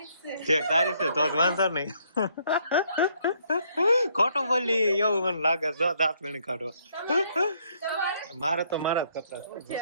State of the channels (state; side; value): inverted; both; correlation -0.69